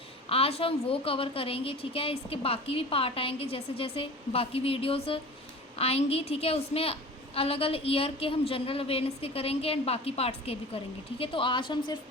आज हम वो कवर करेंगे, ठीक है। इसके बाकी भी पार्ट आएंगे, जैसे जैसे बाकी वीडियोस आएंगी, ठीक है, उसमें अलग अलग ईयर के हम जनरल अवेयरनेस के करेंगे एंड बाकी पार्ट्स के भी करेंगे, ठीक है। तो आज हम सिर्फ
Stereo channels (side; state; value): both; normal; correlation 0.38